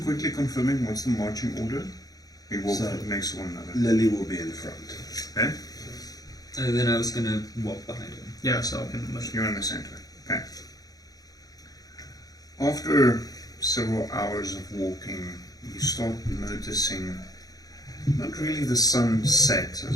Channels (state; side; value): late; right; 0.18 ms